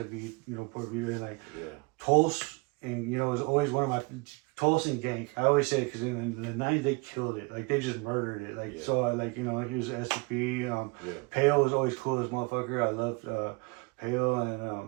Port Vita, and like Tulse, and it was always one of my Tulse and Gank. I always say it because in the 90s they killed it, like they just murdered it, like so I like he was SCP. Pale was always cool as motherfucker. I loved Pale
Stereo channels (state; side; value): quieter; left; 27.3 dB